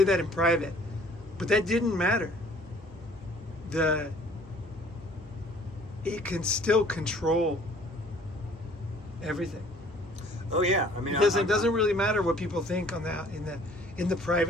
that in private, but that didn't matter. It can still control everything. Oh yeah, I mean, It doesn't really matter what people think on that in the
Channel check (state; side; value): normal; both; correlation 0.55